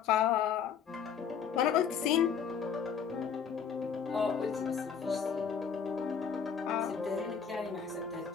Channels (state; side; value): quieter; right; 7.1 dB